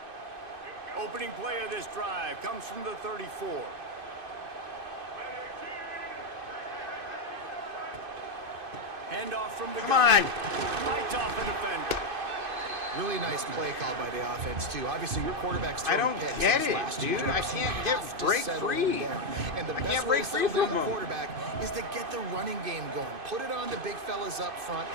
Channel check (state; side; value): late; left; 2.5 ms